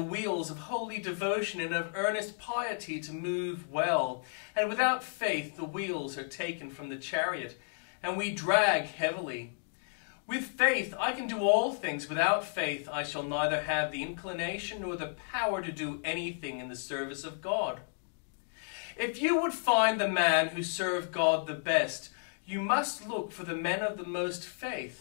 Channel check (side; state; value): right; silent; digital silence